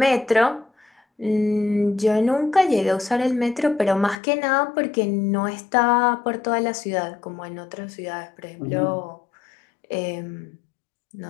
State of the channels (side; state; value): right; drops out; at 4.2 s